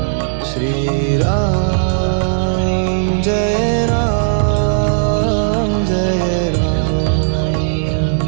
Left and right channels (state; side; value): silent; left; digital silence